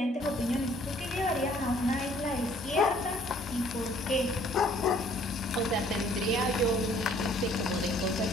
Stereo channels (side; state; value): both; normal; correlation 0.59